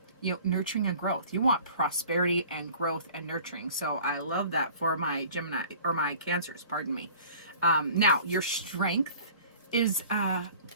nurturing and growth. You want prosperity and growth and nurturing. So I love that for my Gemini, or my Cancers. Pardon me. Now your strength is the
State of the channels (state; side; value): inverted; both; correlation -0.47